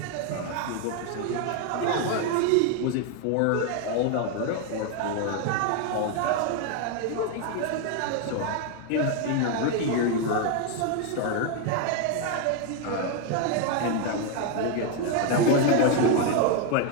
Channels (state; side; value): different; both; correlation 0.01